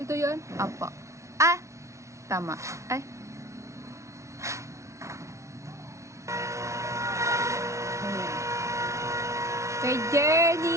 Ito yon. Apa. Ah! Tama. Ay. Kay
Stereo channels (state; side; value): late; left; 0.14 ms